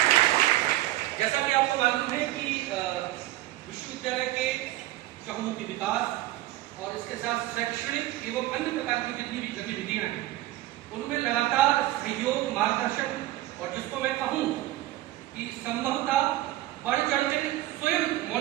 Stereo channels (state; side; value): quieter; left; 16.2 dB